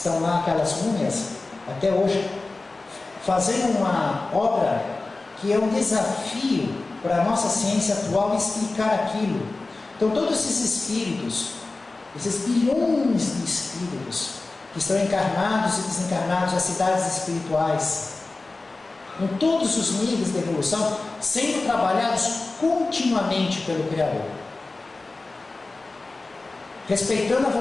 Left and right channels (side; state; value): right; quieter; 3.4 dB